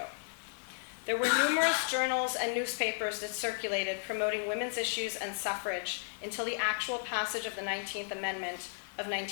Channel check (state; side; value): silent; right; digital silence